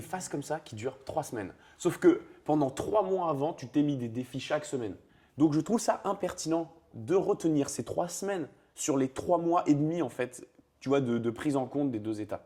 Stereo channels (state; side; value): identical; both; correlation 1.00